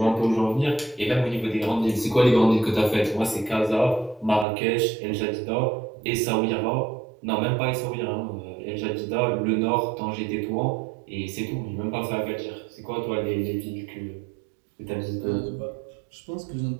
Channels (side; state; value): left; drops out; at 4.5 s